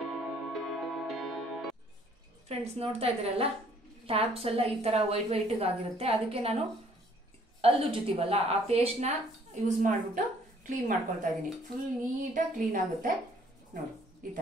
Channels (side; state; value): both; normal; correlation 0.61